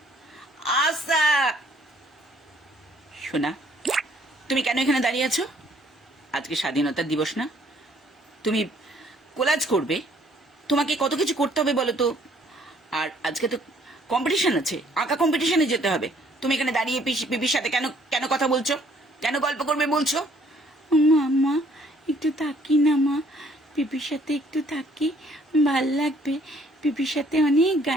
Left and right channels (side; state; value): both; normal; correlation 0.62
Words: আচ্ছা। সোনা, তুমি কেন এখানে দাঁড়িয়ে আছো? আজকে স্বাধীনতা দিবস না? তুমি কোলাজ করবে, তোমাকে কত কিছু করতে হবে বলো তো। আর আজকে তো কম্পিটিশন আছে, আঁকা কম্পিটিশনে যেতে হবে। তুমি এখানে দাঁড়িয়ে পিপির সাথে কেন কেন কথা বলছো? কেন গল্প করবে বলছো? মা, একটু থাকি না মা, পিপির সাথে একটু থাকি, ভাল লাগবে। পিপির সাথে অনেক